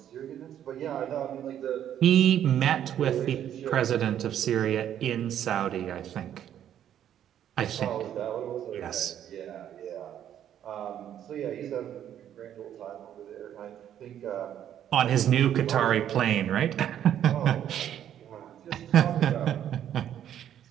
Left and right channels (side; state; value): left; quieter; 10.4 dB